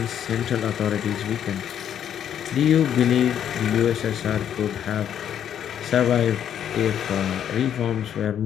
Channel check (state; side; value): quieter; right; 9.6 dB